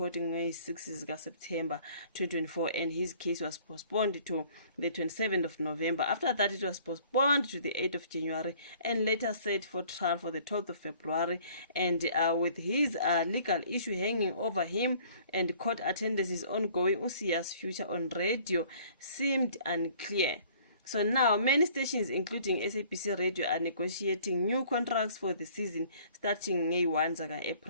on 6 September 2024 and his case was postponed to the 27th of November. After that, it was postponed to the 8th of January and later set for trial for the 12th of February. And with his legal issue hanging over him and court attendance is ongoing, uSiya's future on radio seemed unclear. So now, many stations, including SABC Radio, are negotiating new contracts for the season starting May 1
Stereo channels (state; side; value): inverted; both; correlation -0.55